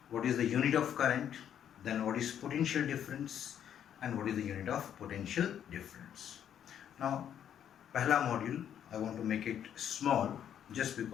what is the unit of current, then what is potential difference, and what is the unit of potential difference. Now पहला module I want to make it small just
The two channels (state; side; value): quieter; right; 9.5 dB